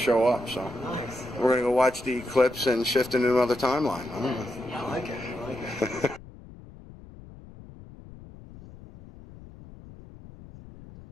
up. So we're going to go watch the eclipse and shift into another timeline. I don't know. I like it.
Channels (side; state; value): left; noise; rumble, 18 dB below the sound